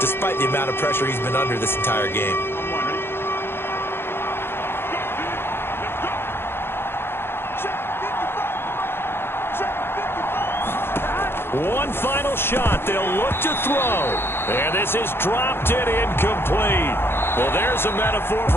the amount of pressure he's been under this entire game. One final shot. They'll look to throw. And this is dropped and incomplete. Well, there's a metaphor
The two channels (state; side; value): late; right; 0.11 ms